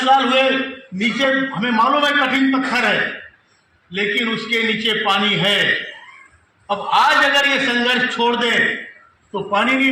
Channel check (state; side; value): identical; both; correlation 1.00